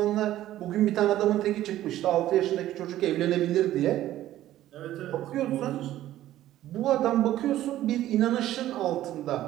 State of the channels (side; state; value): left; quieter; 13.7 dB